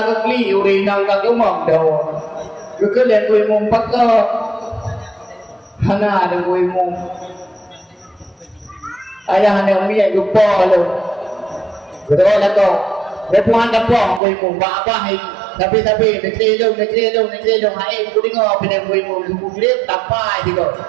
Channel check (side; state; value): left; drops out; at 14.2 s